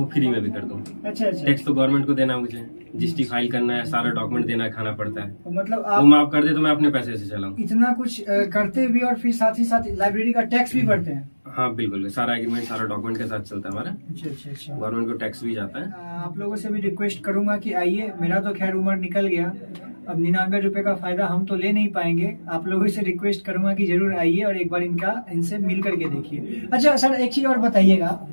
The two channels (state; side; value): inverted; both; correlation -1.00